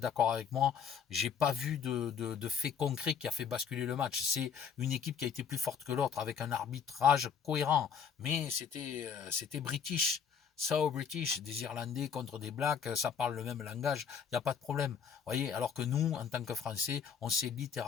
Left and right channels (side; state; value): right; quieter; 7.0 dB